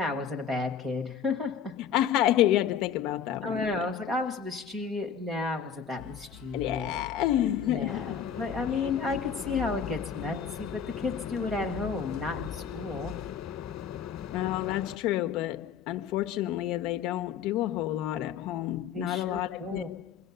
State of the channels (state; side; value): quieter; right; 7.7 dB